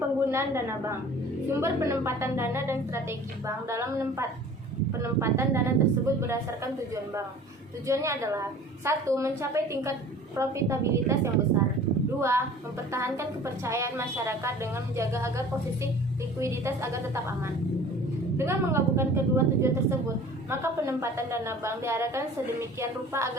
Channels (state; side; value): normal; both; correlation 0.45